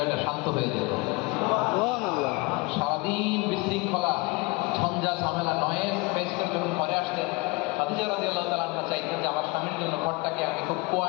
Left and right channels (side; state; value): right; quieter; 25.6 dB